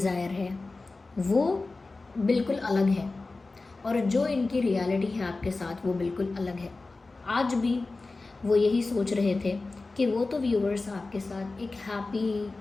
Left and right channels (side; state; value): right; quieter; 3.5 dB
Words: है, वो बिल्कुल अलग है, और जो इनकी रियलिटी है आपके साथ वो बिल्कुल अलग है। आज भी वो यही सोच रहे थे कि वो तो व्यूअर्स आपके साथ एक happy,